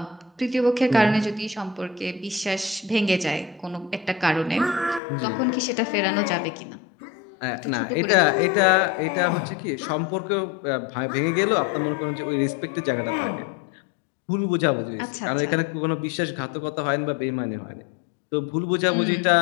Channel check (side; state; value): right; drops out; at 5.0 s